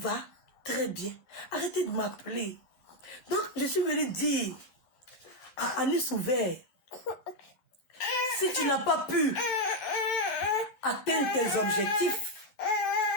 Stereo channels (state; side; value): late; right; 12 ms